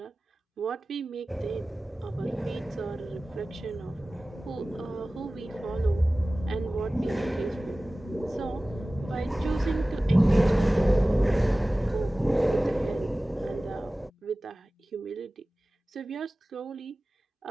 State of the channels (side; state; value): both; normal; correlation 0.97